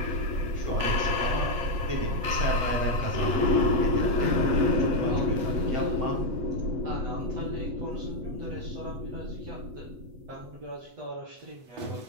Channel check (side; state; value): left; late; 8.1 ms